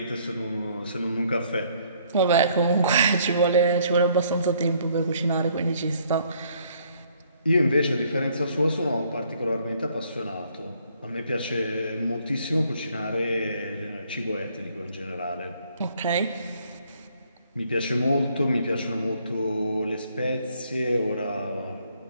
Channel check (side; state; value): both; inverted; correlation -0.65